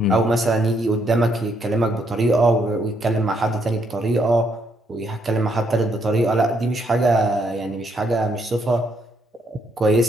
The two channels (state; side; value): normal; both; correlation 0.73